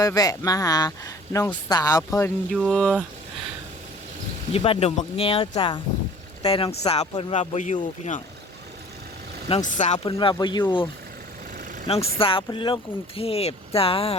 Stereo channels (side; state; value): both; normal; correlation 0.48